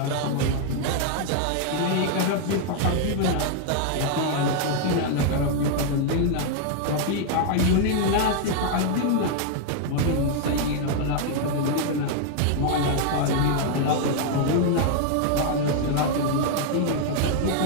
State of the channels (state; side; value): different; both; correlation 0.00